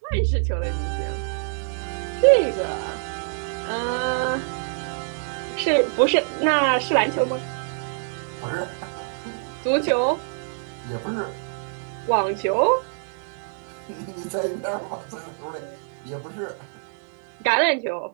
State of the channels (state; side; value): silent; left; 62 dB below the other